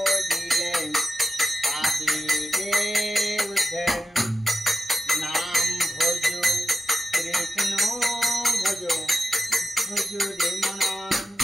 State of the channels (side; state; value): both; normal; correlation 0.91